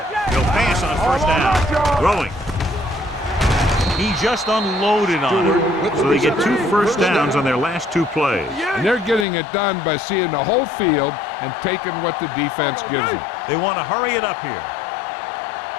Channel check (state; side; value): drops out; right; at 9.2 s